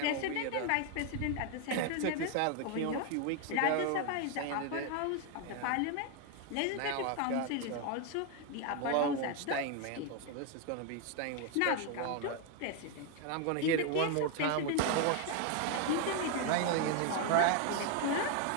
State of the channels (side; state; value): both; different; correlation 0.01